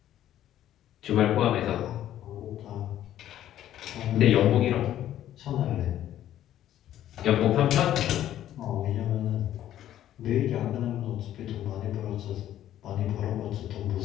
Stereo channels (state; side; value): quieter; right; 12.1 dB